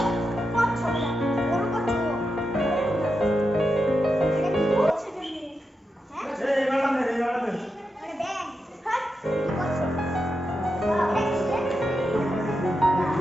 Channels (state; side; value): normal; both; correlation 0.87